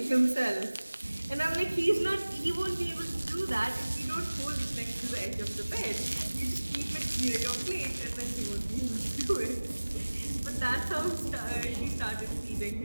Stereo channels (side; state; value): both; inverted; correlation -1.00